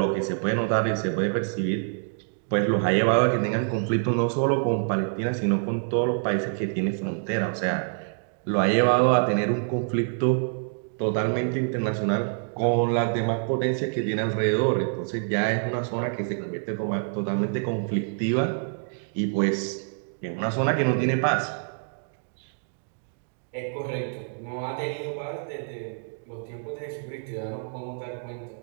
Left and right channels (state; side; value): silent; left; digital silence